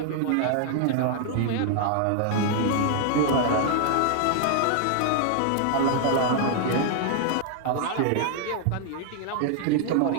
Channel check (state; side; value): different; both; correlation 0.00